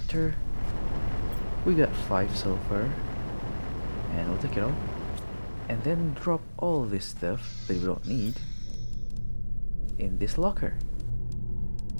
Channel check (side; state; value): both; inverted; correlation -1.00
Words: We got 5 sulfur, and we'll take it all. And then drop all this stuff that we don't need in this locker.